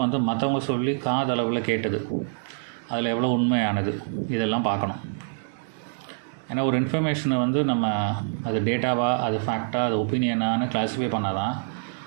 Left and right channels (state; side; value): silent; left; digital silence